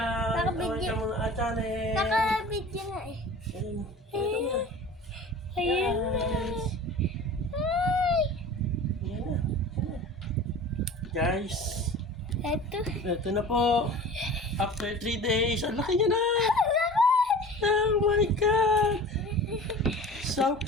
Naka-video. Welcome to our channel! Naka-video nga eh. Ayun. Ayun na. Guys. Hi! Ayan na. Guys, Ito. ito na po. After 3 days, ang laki niya na! Oh my God! So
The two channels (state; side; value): normal; both; correlation 0.39